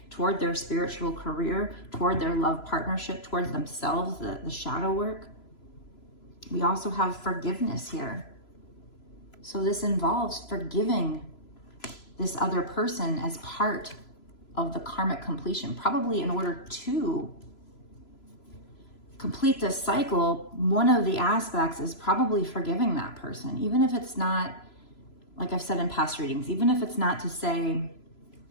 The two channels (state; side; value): late; right; 3.0 ms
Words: toward their spiritual career, toward their love partnership, towards themselves, the shadow work. We also have forgiveness here. So this involves forgiving this other person as part of the karmic completion. Probably in order to complete this cycle, one of the aspects is probably forgiving that person. Even if it's not, like I've said in past readings, even if it's not to say